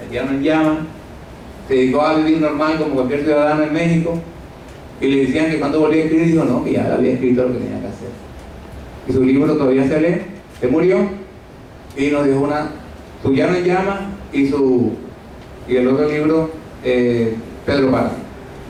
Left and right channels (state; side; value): identical; both; correlation 1.00